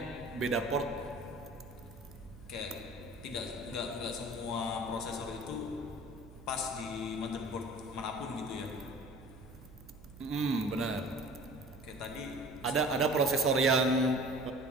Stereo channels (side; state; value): right; noise; hum, 19 dB below the sound